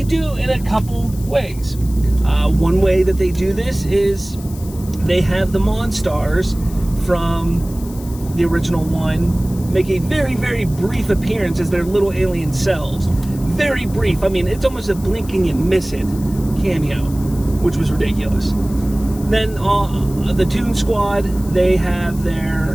do in a couple ways. One way that they do this is they have the Monstars from the original one make a very, very brief appearance as their little alien selves. Very brief. I mean, it's almost a blink and you miss it cameo, which was ridiculous. Then the Toon Squad, they have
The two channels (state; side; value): noise; left; hiss, 19 dB below the sound